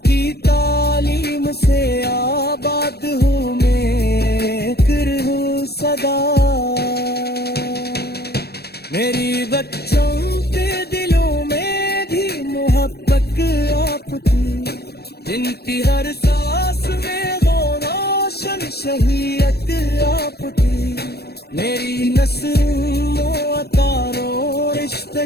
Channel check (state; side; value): late; right; 0.47 ms